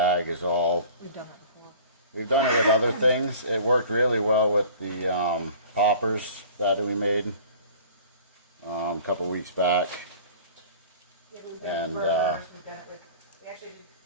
is all... We've done it before. We've done it with other things. It worked really well with the poppers that we made a couple weeks back. Yeah, we've done burgers, we've done it with... We actually did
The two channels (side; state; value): both; inverted; correlation -0.45